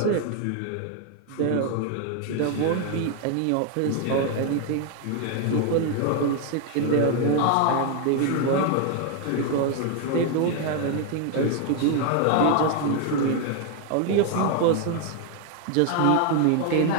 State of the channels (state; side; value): different; both; correlation 0.00